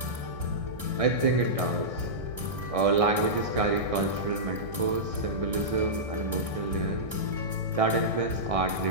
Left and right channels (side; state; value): left; late; 1.6 ms